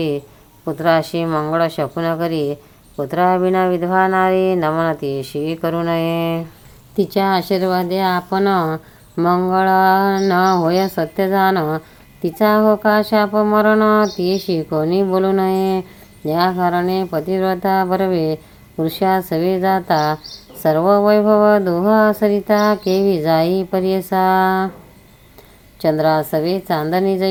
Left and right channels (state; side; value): identical; both; correlation 1.00